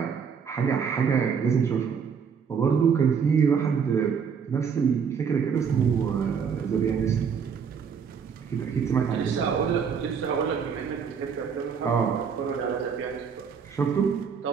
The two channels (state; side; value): quieter; left; 6.7 dB